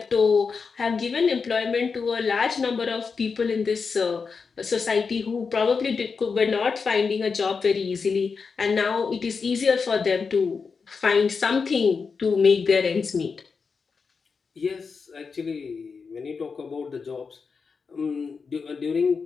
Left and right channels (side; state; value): right; quieter; 5.2 dB